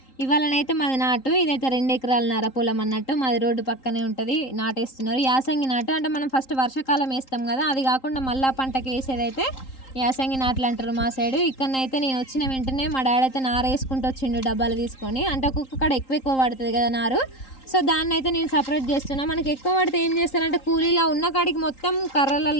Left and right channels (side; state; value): right; late; 3.8 ms